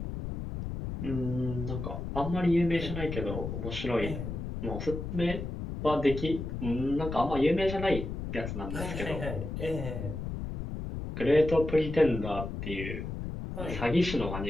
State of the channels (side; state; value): left; noise; rumble, 6 dB below the sound